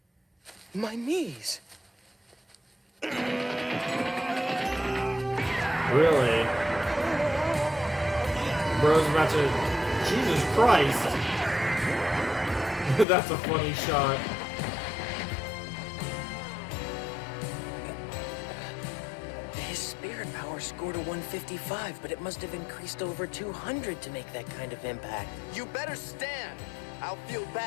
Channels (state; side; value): drops out; right; at 13.1 s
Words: My knees. Really? Bro's about to Jesus Christ. That's a funny shot. His spirit power scored a 155, but it must have increased over 200 to make that kind of impact. You better stand. I'll feel